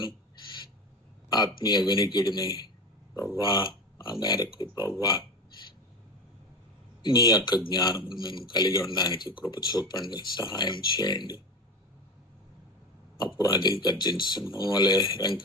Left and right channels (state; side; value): normal; both; correlation 0.26